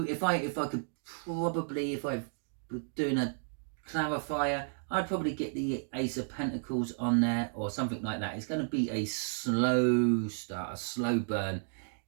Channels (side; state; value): left; silent; digital silence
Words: If I could probably, if I were doing a clarifier, I'd probably get the Ace of Pentacles on there or something like that. It's going to be a slow start, a slow burn,